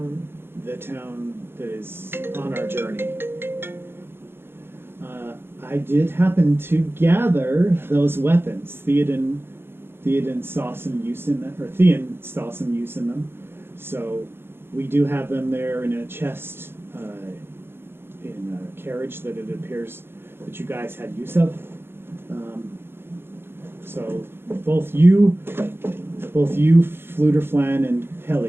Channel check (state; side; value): late; left; 0.11 ms